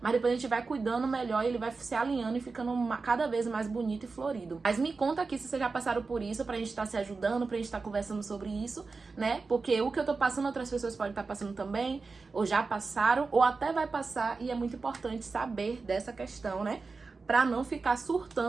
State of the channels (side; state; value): left; quieter; 4.2 dB